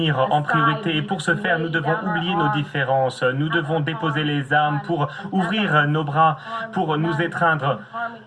en priorité et pour ce faire, nous devons oublier nos différences. Nous devons déposer les armes pour ouvrir nos bras, pour nous étreindre,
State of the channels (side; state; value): both; identical; correlation 1.00